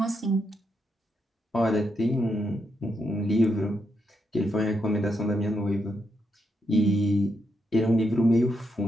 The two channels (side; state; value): both; normal; correlation 0.81